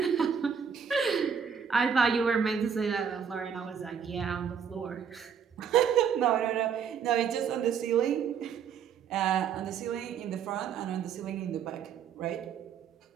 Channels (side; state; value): left; quieter; 7.2 dB